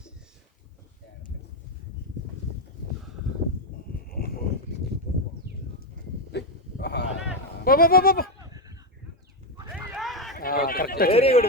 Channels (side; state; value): both; normal; correlation 0.07